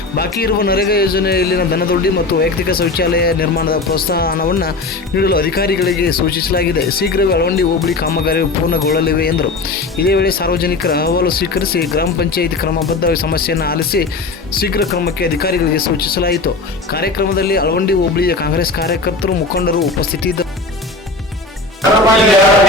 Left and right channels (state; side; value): quieter; right; 3.5 dB